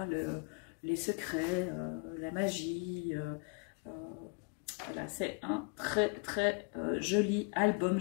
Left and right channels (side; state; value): right; quieter; 35.2 dB